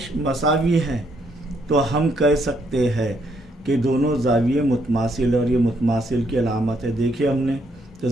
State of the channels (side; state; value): both; normal; correlation 0.72